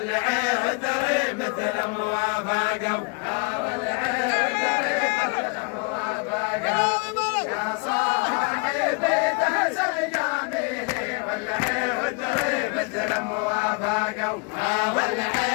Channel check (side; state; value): right; quieter; 33.7 dB